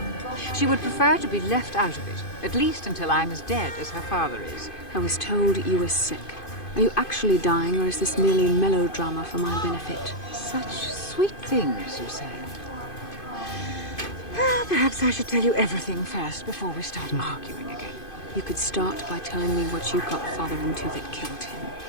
She would prefer to be left out of it, at least until I'm as dead as her father is. I was told you were sick. Are you actually dying, or is this merely melodrama for my benefit? Such sweet things, you say. Perhaps I should tell you everything first before we start arguing again. You could start by telling me what you got Father into that killed him.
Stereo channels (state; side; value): late; right; 2.5 ms